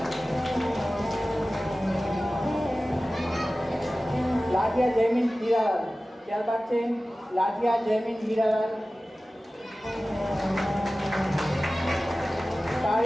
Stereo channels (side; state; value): both; normal; correlation 0.96